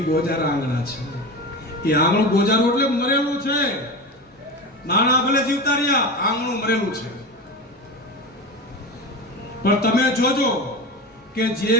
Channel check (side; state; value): both; normal; correlation 0.25